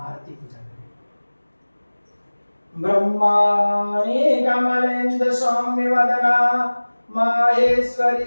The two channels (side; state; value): both; inverted; correlation -1.00